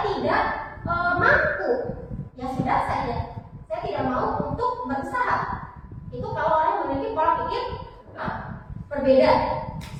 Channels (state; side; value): identical; both; correlation 1.00